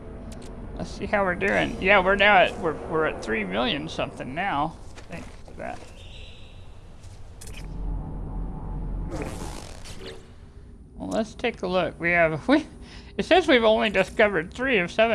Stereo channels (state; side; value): identical; both; correlation 1.00